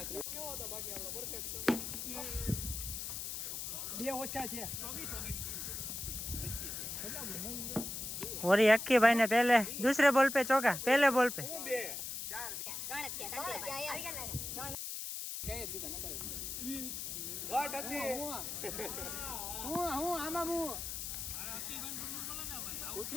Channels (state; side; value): noise; left; hiss, 5 dB below the sound